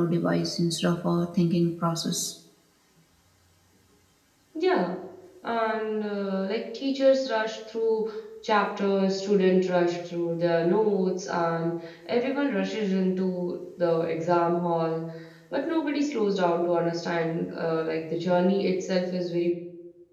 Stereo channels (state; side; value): identical; both; correlation 1.00